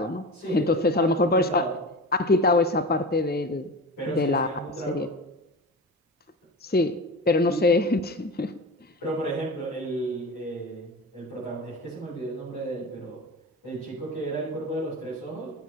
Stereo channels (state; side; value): normal; both; correlation 0.29